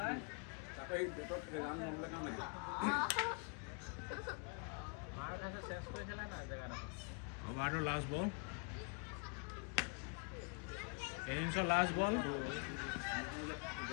অভাৰটোৰ লাষ্ট বল ইনিংছৰ লাষ্ট বল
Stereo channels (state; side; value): quieter; right; 36.6 dB